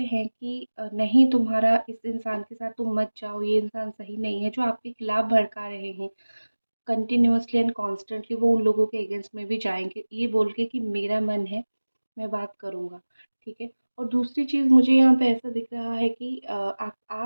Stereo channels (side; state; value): both; inverted; correlation -1.00